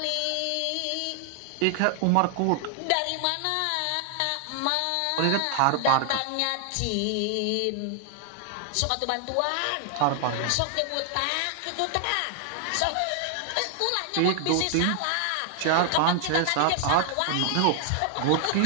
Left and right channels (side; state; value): both; different; correlation -0.01